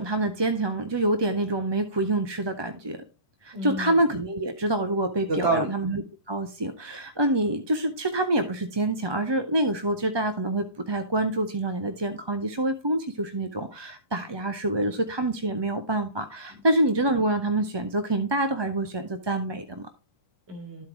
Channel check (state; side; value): late; left; 1.2 ms